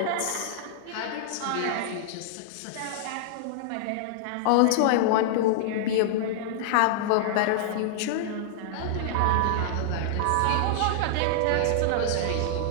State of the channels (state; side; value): different; both; correlation -0.01